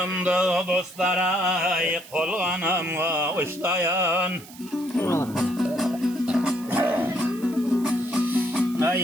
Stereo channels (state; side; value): noise; right; hiss, 19 dB below the sound